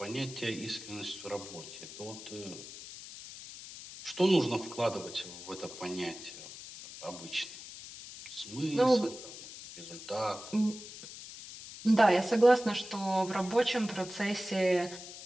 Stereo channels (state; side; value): noise; left; hiss, 13 dB below the sound